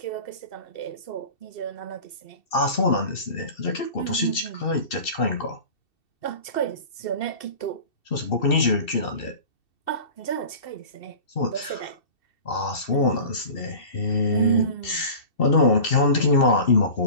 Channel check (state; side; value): late; right; 2.7 ms